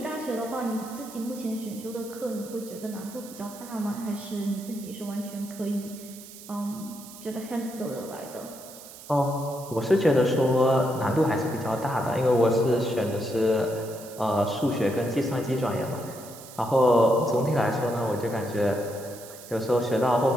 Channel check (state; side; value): noise; right; hiss, 17 dB below the sound